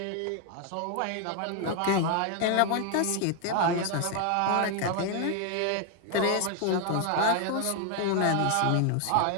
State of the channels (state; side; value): different; both; correlation 0.00